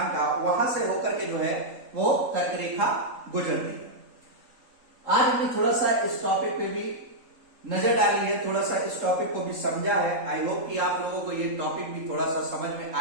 का, वहां से होकर के जो है वो कर्क रेखा गुजरती है। आज हमने थोड़ा सा इस टॉपिक पे भी नजर डाली है, थोड़ा सा इस टॉपिक को भी समझा है। आई होप कि आप लोगों को ये टॉपिक भी थोड़ा सा समझ में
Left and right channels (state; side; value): late; left; 3.8 ms